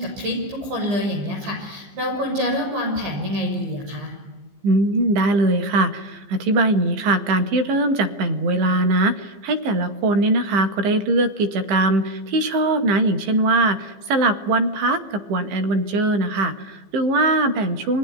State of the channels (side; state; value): left; late; 15 ms